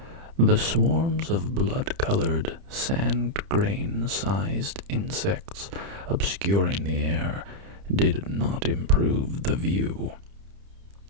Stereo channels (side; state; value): left; late; 30 ms